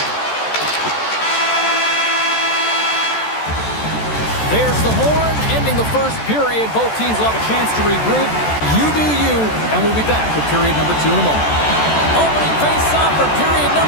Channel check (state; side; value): late; right; 14 ms